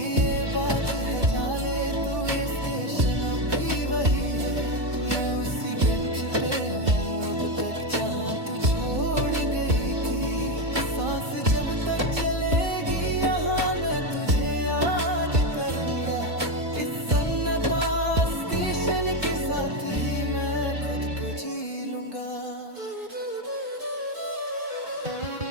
ये बात है जाने तू, ये स्टेशन अब भी वही है। मैं उसी बेंच पे हूँ अब तक जहाँ तू छोड़ गई थी। सांस जब तक चलेगी यहाँ मैं तुझे याद करूँगा। इस सन्नाटा स्टेशन के साथ ही मैं खुद को जी लूँगा।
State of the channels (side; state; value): left; late; 2.5 ms